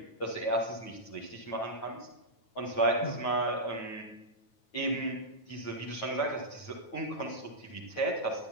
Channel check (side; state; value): right; late; 9.1 ms